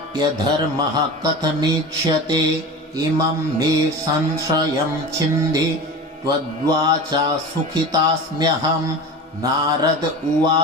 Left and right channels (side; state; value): both; normal; correlation 0.31